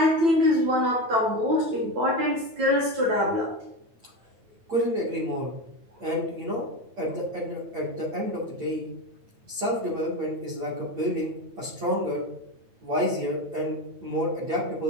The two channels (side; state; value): left; late; 9.1 ms